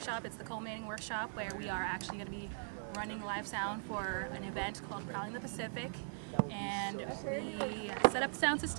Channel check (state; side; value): silent; left; digital silence